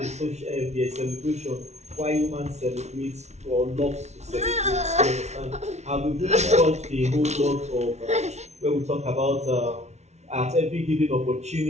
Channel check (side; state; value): left; late; 0.32 ms